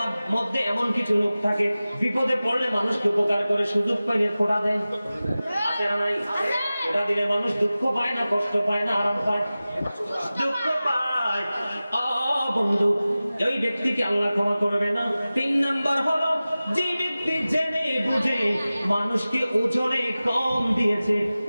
মধ্যে এমন কিছু লোক থাকে বিপদে পড়লে মানুষকে উপকার করে, সুযোগ পাইলে ফোঁটা দেয়। আছে না নাই? ফোঁটা দিলে মানুষ দুঃখ পায় না, কষ্ট পায় না, আরাম পায়? দুঃখ পায়। বন্ধু, ওই ব্যক্তিকে আল্লাহ ক্ষমা করবে না। 3 নাম্বার হলো যে ব্যক্তি জেনে বুঝে মানুষকে ওজনে কম দিয়েছে,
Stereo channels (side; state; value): both; inverted; correlation -0.97